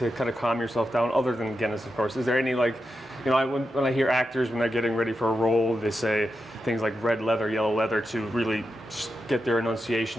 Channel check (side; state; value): both; normal; correlation 0.88